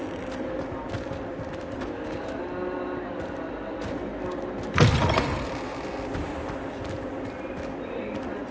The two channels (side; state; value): both; identical; correlation 1.00